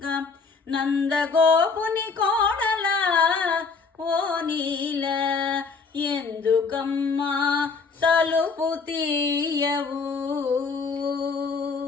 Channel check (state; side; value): quieter; right; 4.8 dB